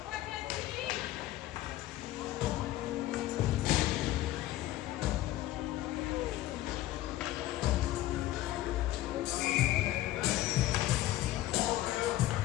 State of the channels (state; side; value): quieter; right; 15.1 dB